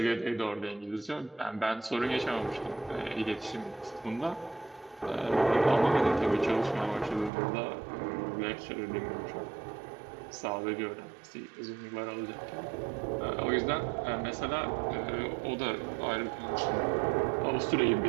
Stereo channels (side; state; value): left; drops out; at 7.3 s